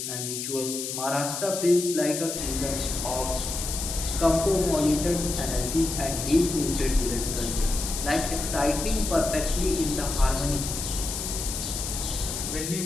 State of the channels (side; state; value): left; noise; hiss, 4 dB below the sound